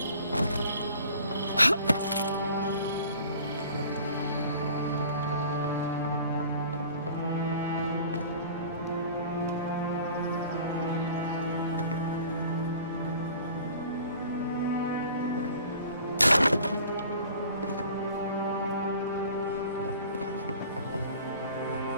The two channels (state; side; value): inverted; both; correlation -0.47